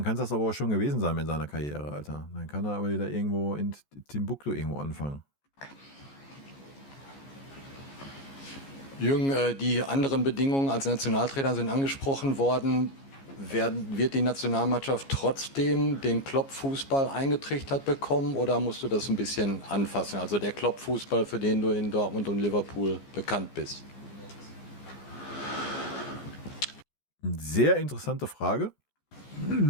kann es das aber auch schon gewesen sein mit seiner Karriere, Alter. Dann kann er aber wieder irgendwo in Timbuktu irgendwo anfangen. Jürgen, die anderen Bedingungen als Nationaltrainer sind angesprochen worden. Wird die Nationalmannschaft trotzdem den Klopp-Fußball eingetrichtert bekommen, oder musst du das ein bisschen anfassen? Also der Klopp-Fußball, für den du in Dortmund und Liverpool bekannt bist. Sehr interessante Frage.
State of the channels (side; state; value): right; late; 15 ms